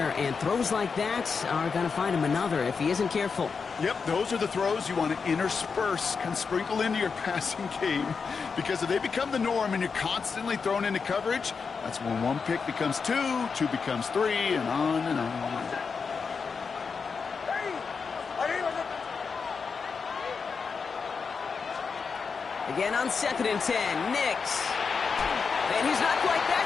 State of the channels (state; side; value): quieter; right; 5.4 dB